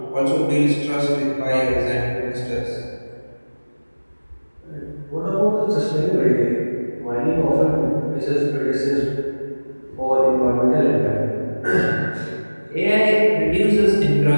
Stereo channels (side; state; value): both; inverted; correlation -1.00